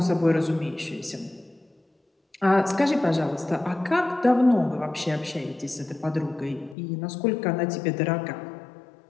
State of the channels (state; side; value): drops out; right; at 6.8 s